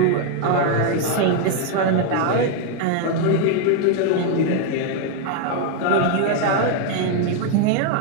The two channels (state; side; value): different; both; correlation 0.01